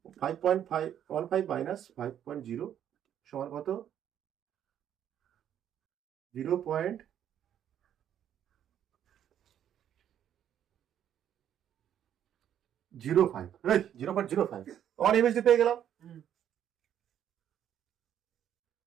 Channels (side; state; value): left; quieter; 10.0 dB